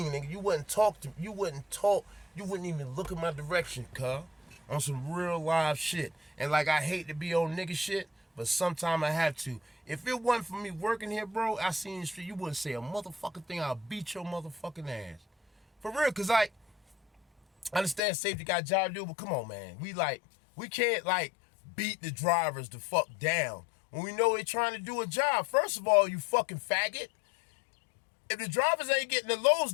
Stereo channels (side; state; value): right; drops out; at 18.0 s